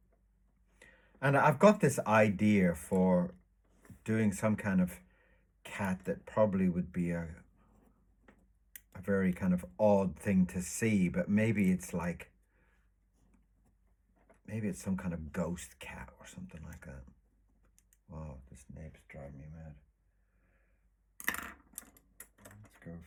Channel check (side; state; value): both; identical; correlation 1.00